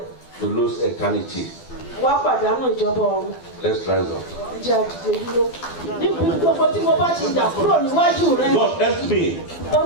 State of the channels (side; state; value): right; late; 12 ms